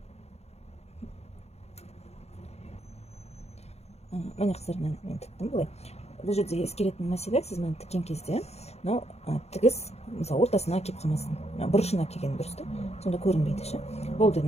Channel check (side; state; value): right; late; 0.31 ms